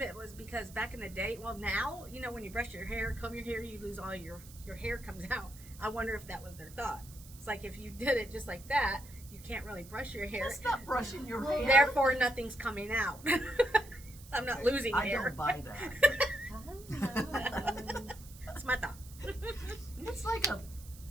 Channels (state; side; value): noise; right; hiss, 19 dB below the sound